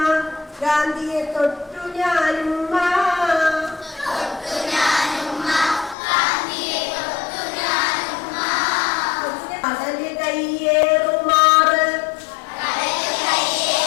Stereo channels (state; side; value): drops out; right; at 6.0 s